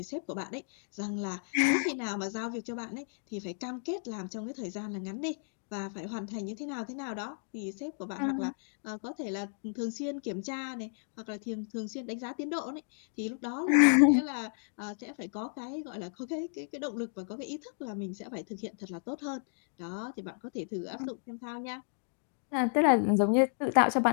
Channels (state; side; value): silent; right; digital silence